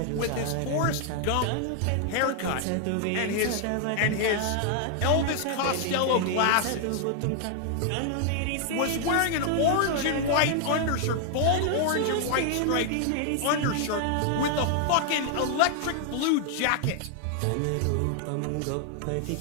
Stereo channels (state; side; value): different; both; correlation 0.00